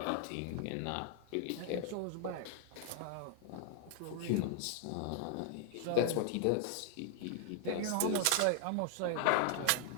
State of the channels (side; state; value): both; different; correlation 0.00